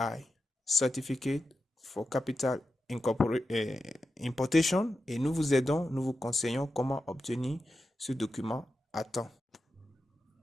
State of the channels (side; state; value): both; normal; correlation 0.91